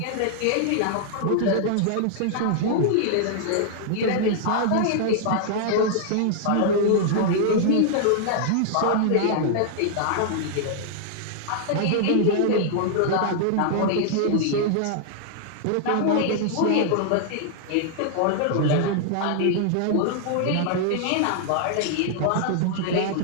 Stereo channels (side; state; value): both; different; correlation -0.01